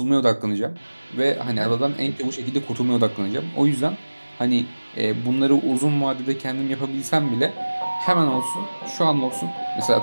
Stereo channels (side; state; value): both; inverted; correlation -1.00